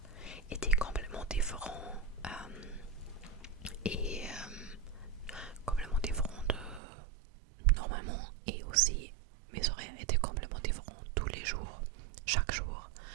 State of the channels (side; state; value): left; drops out; at 6.8 s